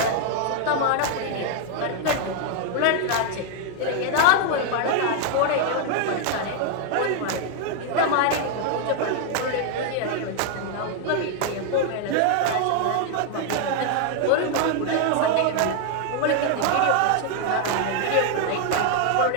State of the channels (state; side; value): different; both; correlation 0.00